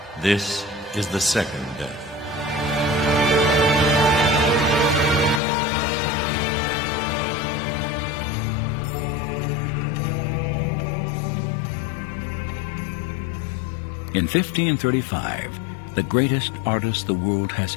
This is the second death. In 1535, the greatest artist the world has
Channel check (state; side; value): drops out; right; at 5.4 s